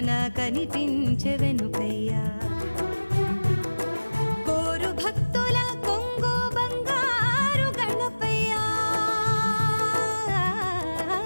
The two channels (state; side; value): inverted; both; correlation -1.00